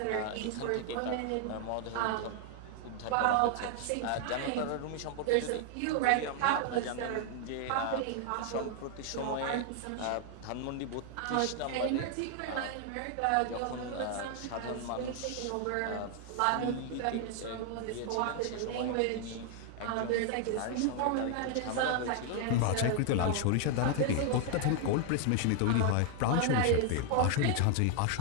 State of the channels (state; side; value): different; both; correlation 0.00